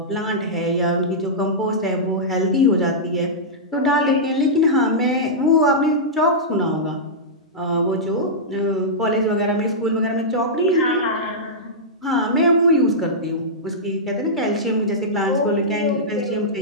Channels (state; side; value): normal; both; correlation -0.12